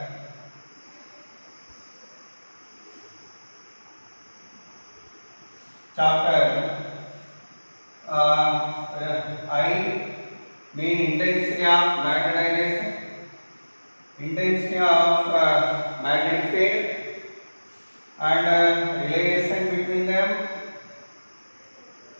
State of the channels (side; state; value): both; inverted; correlation -1.00